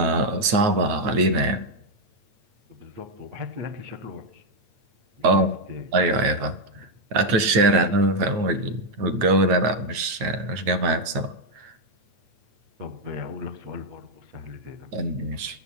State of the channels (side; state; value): left; late; 8.8 ms